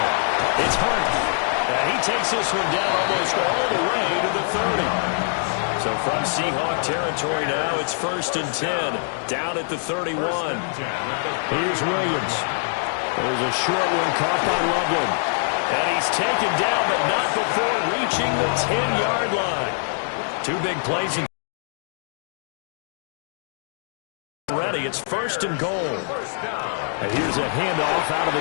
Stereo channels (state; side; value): silent; right; digital silence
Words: It's Hunt. He takes this one down almost all the way to the 30. So from Seahawk territory now, it's 1st and 10. Down at the 31. Here's Williams. There's a short one caught by Loveland. And he's taken down, but not before reaching the 10-yard line. 2 big plays. Ready, it's 1st and goal. And here's a handoff out of